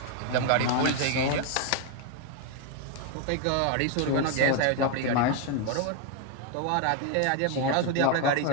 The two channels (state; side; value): different; both; correlation 0.01